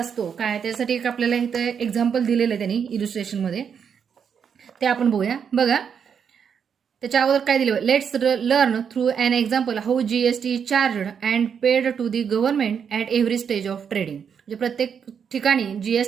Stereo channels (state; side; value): quieter; left; 7.2 dB